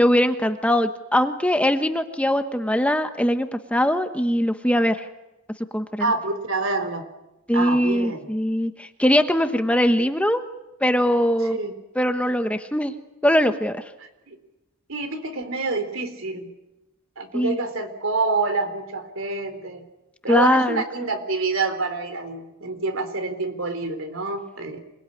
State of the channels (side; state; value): both; normal; correlation 0.63